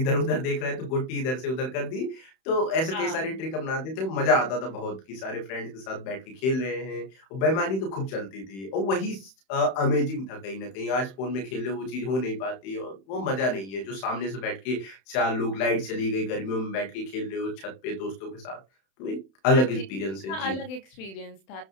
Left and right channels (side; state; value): right; late; 31 ms